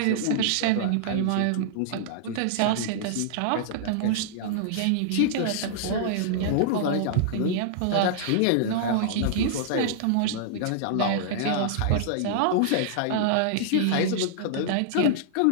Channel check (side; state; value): both; different; correlation -0.01